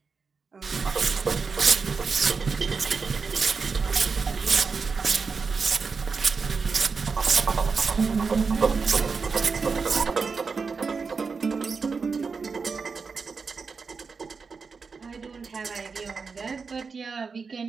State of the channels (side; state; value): left; quieter; 5.0 dB